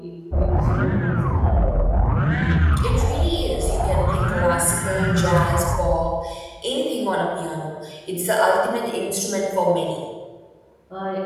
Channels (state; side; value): identical; both; correlation 1.00